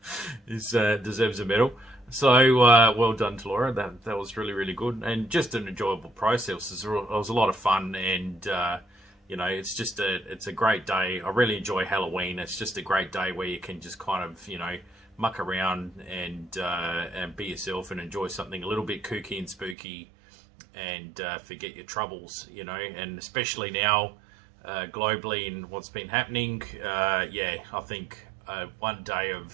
deserves a medal. So well done to Laura. That was really good, and just an enjoyable process. It was a lot of fun, and you know, it's a great day. I really enjoy Halloween. It's just a great day where you can just kind of, you know, muck around and be yourself and enjoy something a little bit kooky and spooky, and forget your troubles, you know. And especially now, globally, and what's been happening, yeah, I think one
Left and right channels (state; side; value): drops out; left; at 19.8 s